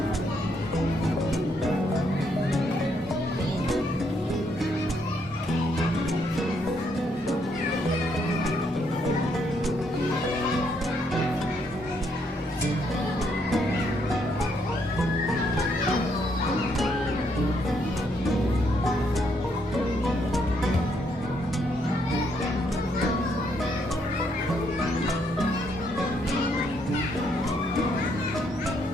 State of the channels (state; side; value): normal; both; correlation 0.73